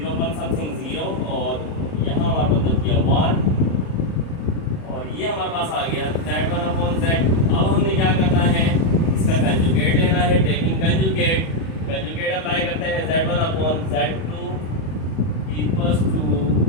पर समथिंग 0, और यहाँ हमारे पास बच गया 1, और ये हमारे पास आ गया z1/z। अब हमने क्या करना है, इसका कंजुगेट लेना है, टेकिंग कंजुगेट, कंजुगेट अप्लाई करते हैं, z1/z2 इक्वल्स टू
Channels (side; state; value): right; late; 37 ms